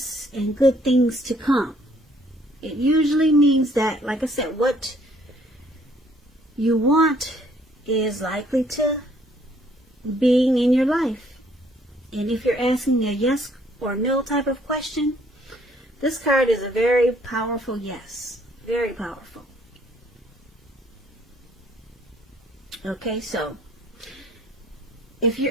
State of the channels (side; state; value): both; normal; correlation 0.63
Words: and good things to come. It usually means that, like I said, what you want is likely to being in your life. And if you're asking a yes or no type of question, this card is a very powerful yes. Very powerful. Okay, so if